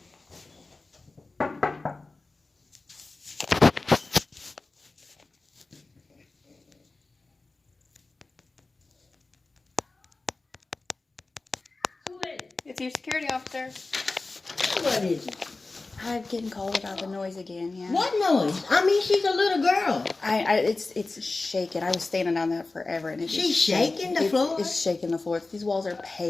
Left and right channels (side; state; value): right; quieter; 3.5 dB